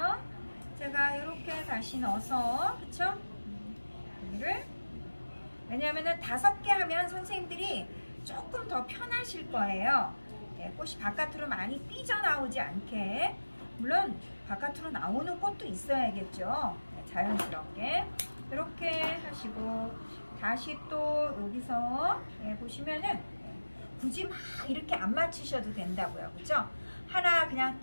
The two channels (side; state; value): both; inverted; correlation -1.00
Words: 제가 이렇게 다시 넣어서 그쵸? 여기를 왜냐하면 5개 하면 선생님들이 조금 더 편하실 거예요. 꽃이 바깥으로 많이 삐져나오지 않게. 물론 바깥으로 나오는 꽃도 있어야겠죠. 자연스럽게 이렇게 하시고 다시 또 여기서 보시면은 굳이 막 이렇게 안 맞추셔도 된다고요. 그죠? 하나 그냥